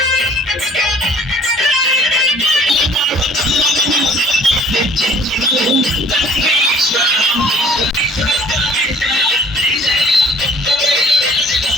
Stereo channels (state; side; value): normal; both; correlation 0.54